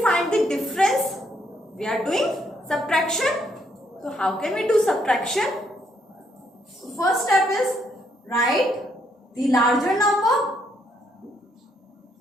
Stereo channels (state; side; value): normal; both; correlation 0.72